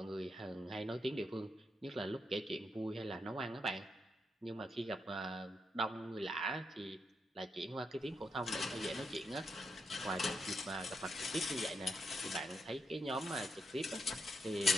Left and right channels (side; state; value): both; normal; correlation 0.82